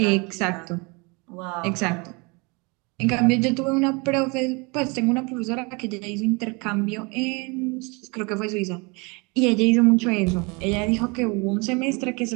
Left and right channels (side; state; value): left; quieter; 29.0 dB